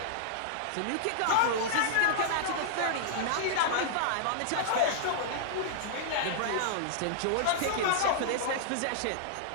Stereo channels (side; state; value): both; different; correlation -0.01